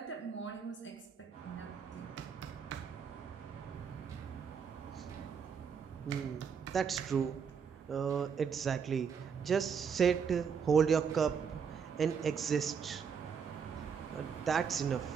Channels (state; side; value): quieter; left; 6.7 dB